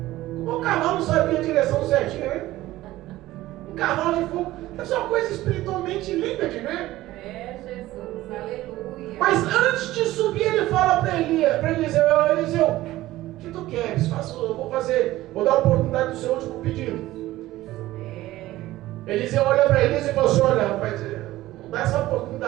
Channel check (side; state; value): left; quieter; 16.3 dB